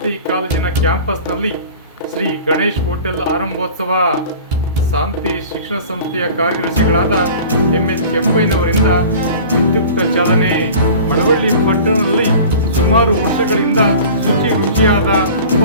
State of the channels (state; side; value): inverted; both; correlation -0.40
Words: ಕಾಲೇಜಿನ ಕ್ಯಾಂಪಸ್ನಲ್ಲಿ ಶ್ರೀ ಗಣೇಶ್ ಹೋಟೆಲ್ ಆರಂಭೋತ್ಸವ. ಶಾಂತಿ ಶಿಕ್ಷಣ ಸಂಸ್ಥೆಯ ಕಾರ್ಯದರ್ಶಿಗಳಾದ ಎಂ.ಎಚ್. ಕೆಂಪಯ್ಯನವರಿಂದ ವಿದ್ಯುಕ್ತ ಚಾಲನೆ. ಮಳವಳ್ಳಿ ಪಟ್ಟಣದಲ್ಲಿ ಸುಮಾರು ವರ್ಷಗಳಿಂದ ರುಚಿಯಾದ